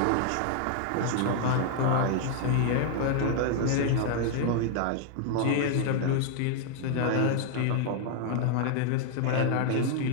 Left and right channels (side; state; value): both; different; correlation 0.00